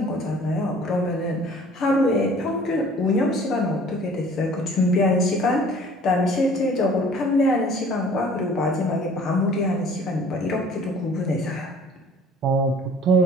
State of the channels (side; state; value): both; normal; correlation 0.50